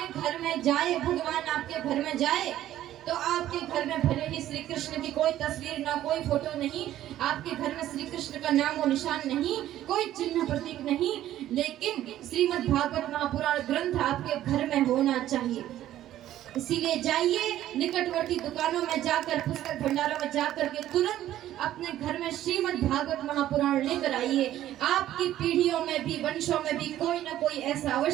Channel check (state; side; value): quieter; left; 12.9 dB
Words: घर में जाए, भगवान आपके घर में जाए, तो आपके घर में भले ही श्री कृष्ण की कोई तस्वीर ना, कोई फोटो नहीं, आपके घर में श्री कृष्ण का नाम और निशान नहीं, कोई चिन्ह प्रतीक नहीं, लेकिन श्रीमद् भागवत महापुराण ग्रंथ आपके घर में होना चाहिए। इसीलिए जाइए, निकटवर्ती दुकानों में जाकर, पुस्तक भंडारों में जाकर के तुरंत अपने घर में श्रीमद् भागवत महापुराण लेकर आइए। आपकी पीढ़ियों में भी, वंशों में भी कोई ना कोई ऐसा